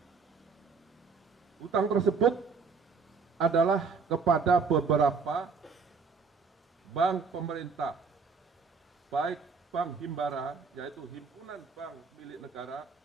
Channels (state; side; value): quieter; left; 5.1 dB